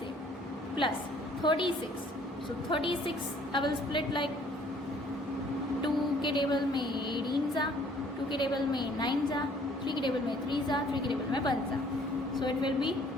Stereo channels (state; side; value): normal; both; correlation 0.59